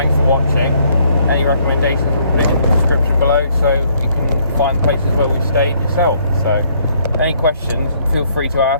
for watching. Any recommendations, we'll put it in the description below so you can find places where we stayed yourself. So any questions, feel free to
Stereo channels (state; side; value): inverted; both; correlation -0.67